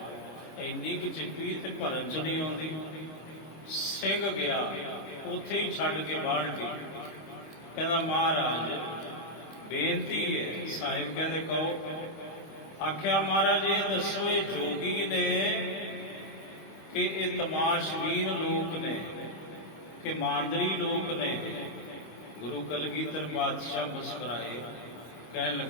ਇੰਨੀ ਕੁ ਚਿੱਪੀ ਤੇ ਭਰਨ ਚ ਨਹੀਂ ਆਉਂਦੀ। ਸਿੰਘ ਗਿਆ, ਉੱਥੇ ਹੀ ਛੱਡ ਕੇ ਬਾਲਟੀ, ਕਹਿੰਦਾ ਮਹਾਰਾਜ ਬੇਨਤੀ ਹੈ। ਸਾਹਿਬ ਕਹਿੰਦੇ ਕਹੋ। ਆਖਿਆ ਮਹਾਰਾਜ ਇਹ ਦੱਸੋ, ਇਹ ਜੋਗੀ ਨੇ ਕਿ ਇਹ ਤਮਾਸ਼ਬੀਨ ਲੋਕ ਨੇ ਕਿ ਮਾਂਦਰੀ ਲੋਕ ਨੇ? ਗੁਰੂ ਕਲਗੀਧਰ ਪਾਤਸ਼ਾਹ ਮੁਸਕਰਾਏ, ਕਹਿਣ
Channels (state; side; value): late; right; 26 ms